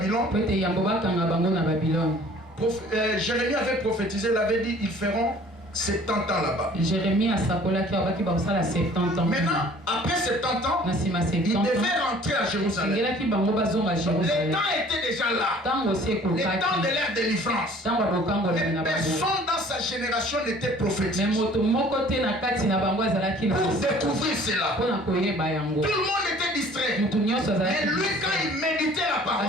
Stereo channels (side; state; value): both; normal; correlation 0.52